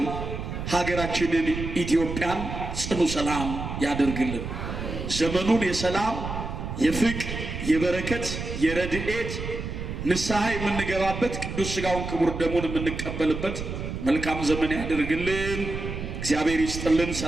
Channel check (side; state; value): right; noise; rumble, 6 dB below the sound